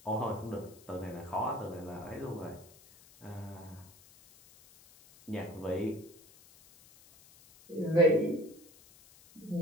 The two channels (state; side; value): noise; left; hiss, 24 dB below the sound